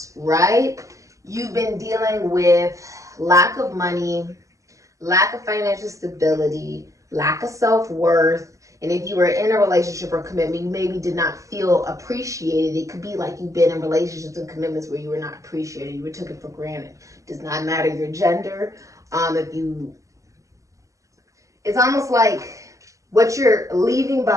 right? You've been dealing with lack of money, lack of financial stability, lack of self-worth. And if you were in a relationship or commitment, you maybe did not feel appreciated. It could be like you've been in relationships and commitments where you were not appreciated. You were taken for granted. Does not matter your gender. It's almost like what you're leaving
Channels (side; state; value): left; late; 0.15 ms